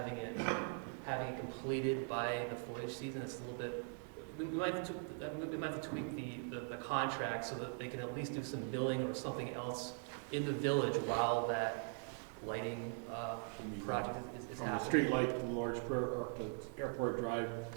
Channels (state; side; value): silent; left; 50 dB below the other